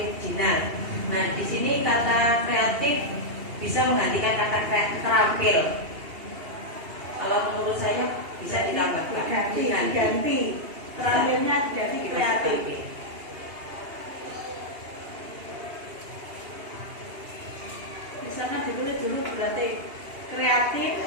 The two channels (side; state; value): left; late; 2.8 ms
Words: Nah, di sini kata kreatif bisa menggantikan kata terampil. Kalau menurut saya bisa ditambahkan. Diganti. Terampilnya jadi kreatif. Misalnya ditulis dulu berarti kreatif,